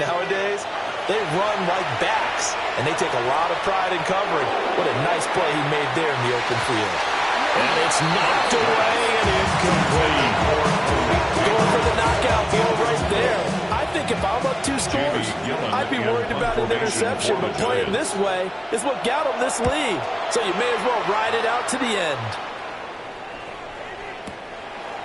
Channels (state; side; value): identical; both; correlation 1.00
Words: they run like backs, and they take a lot of pride in covering. What a nice play he made there in the open field. And it's knocked away and incomplete. Going for the knockout field right there. I think if I'm up 2 scores, I'd be worried about an interception, but playing this way is what got them this lead. So you may as well ride it out to the end.